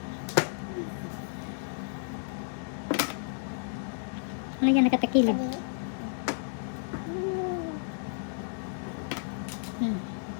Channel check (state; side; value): silent; right; digital silence